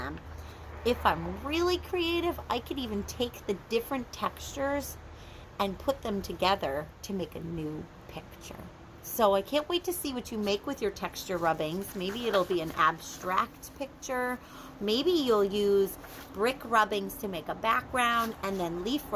If I'm really creative, I could even take the different textures and put them together to make a new picture. So I can't wait to see what you make with your texture rubbings. Maybe it'll be an abstract picture. Maybe you'll use brick rubbings to make a background and then leaf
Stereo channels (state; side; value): identical; both; correlation 1.00